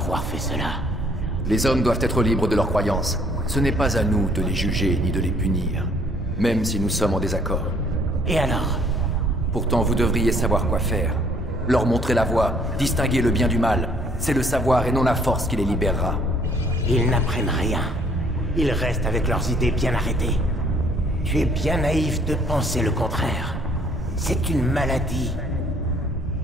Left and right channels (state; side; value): normal; both; correlation 0.61